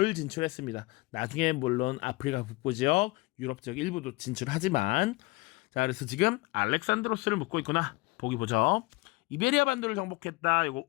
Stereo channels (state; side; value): quieter; right; 22.7 dB